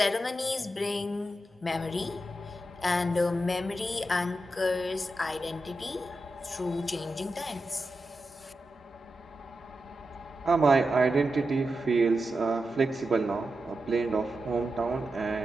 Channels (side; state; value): both; normal; correlation 0.89